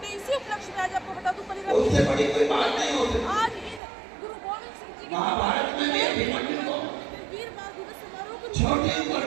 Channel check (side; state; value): left; drops out; at 3.8 s